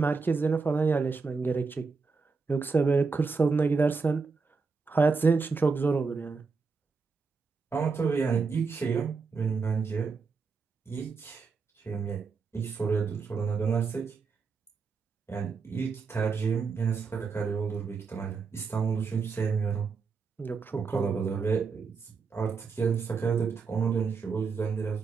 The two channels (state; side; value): quieter; left; 4.8 dB